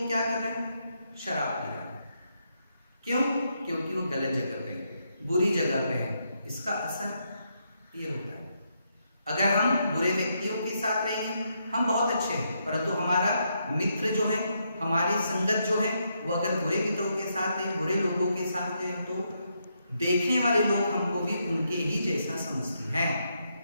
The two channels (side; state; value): both; inverted; correlation -0.79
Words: क्या कर रहा है? शराब पी रहा है। क्यों? क्योंकि वो गलत जगह पे है, बुरी जगह पे है। इसका असर ये होता है। अगर हम बुरे व्यक्तियों के साथ रहेंगे, हम बहुत अच्छे हैं, परंतु हमारा मित्र जो है, हमारी संगत जो है, वो अगर बुरे मित्रों के साथ है, बुरे लोगों के साथ है, तो देखने वाले लोग हमको भी उनके ही जैसा समझते हैं।